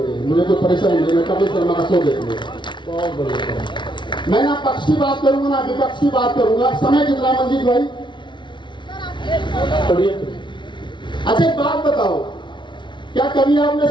है, मुझे कोई परेशानी नहीं, मैं कपिल शर्मा का शो देख लूंगा। बहुत बढ़िया। मैं ना पक्ष की बात करूंगा ना विपक्ष की बात करूंगा। समय कितना मंजीत भाई? अच्छा एक बात बताओ, क्या कभी आपने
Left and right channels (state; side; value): late; right; 0.23 ms